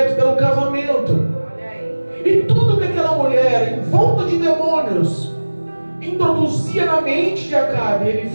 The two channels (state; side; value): inverted; both; correlation -1.00